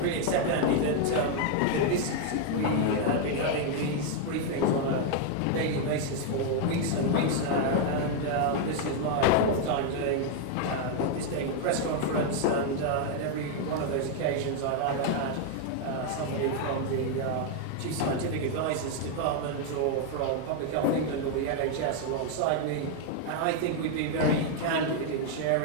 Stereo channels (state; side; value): different; both; correlation 0.00